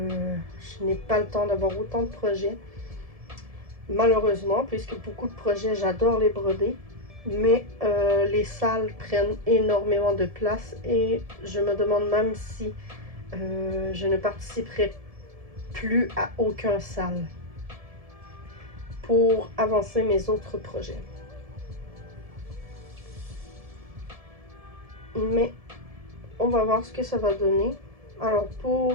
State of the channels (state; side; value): late; left; 1.7 ms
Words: n'ai pas le temps d'avoir autant de projets, malheureusement, puisque beaucoup de projets, j'adore les broder, mais les salles prennent énormément de place, et je me demande même si je ne participerai plus à aucun salle pour avancer mes autres projets. Mais on va voir ce que ça va donner. Alors